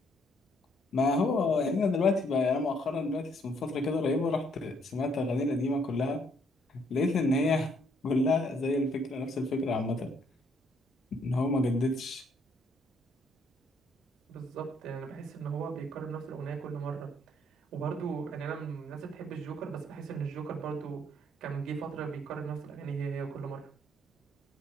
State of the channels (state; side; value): normal; both; correlation 0.68